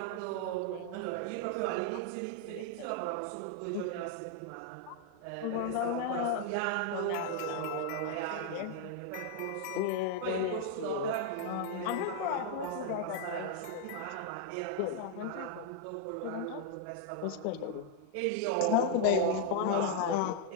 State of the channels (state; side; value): different; both; correlation 0.00